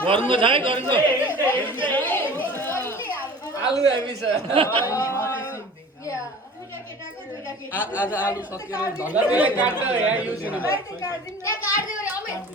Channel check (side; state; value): both; normal; correlation 0.42